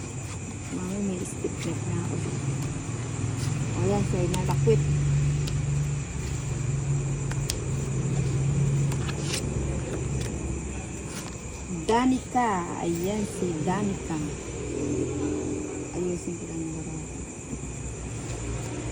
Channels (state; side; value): identical; both; correlation 1.00